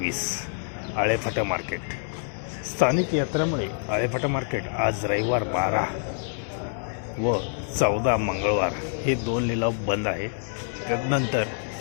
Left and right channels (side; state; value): right; silent; digital silence